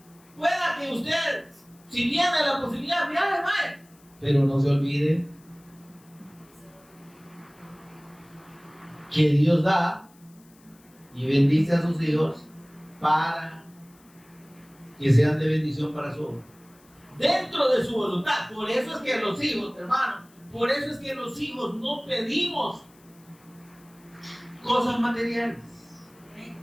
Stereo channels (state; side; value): noise; left; hiss, 29 dB below the sound